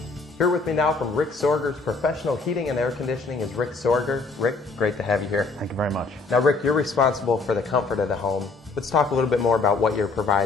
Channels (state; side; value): quieter; right; 3.9 dB